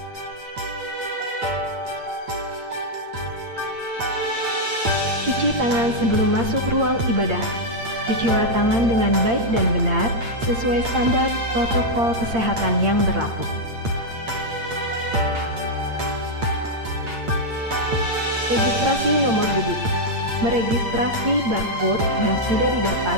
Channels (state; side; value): late; left; 8.7 ms